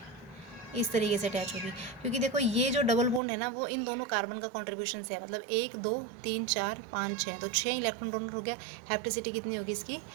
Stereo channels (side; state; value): left; drops out; at 3.2 s